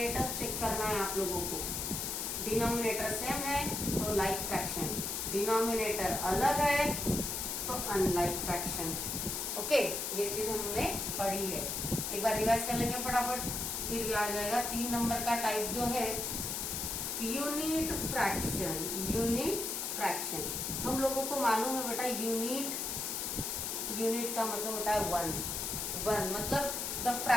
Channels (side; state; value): left; noise; hiss, 2 dB below the sound